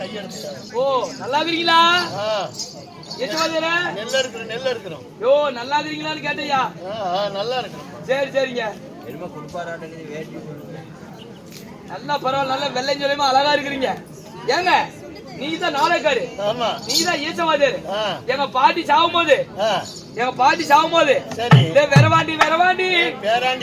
ஓ நல்லா இருக்கீங்களா? ஈச்ச வாத்தியார். நெல்ல இருக்கிறோம். யோ நல்லா இருக்கீங்களான்னு கேட்டயா? நல்லா இருக்கிறோம். சரி சரிங்க. என்னமா குடுப்பாராட்டே வேட்டி நல்லா பரவாயில்ல, நல்லா வெள்ளையும் சொல்லியுமா அழகா இருக்கிறீங்க. ஏங்க நீங்க தான் நாளைக்காரு, ஆமா நீங்க தான் ஈச்சவாதியாரு. எங்க பாட்டி சாவும் போது சரி வெறவாண்டி வெறவாண்டி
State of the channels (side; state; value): both; identical; correlation 1.00